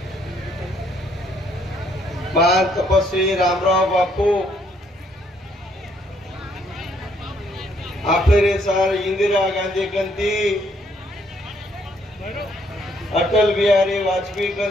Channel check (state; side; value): normal; both; correlation 0.69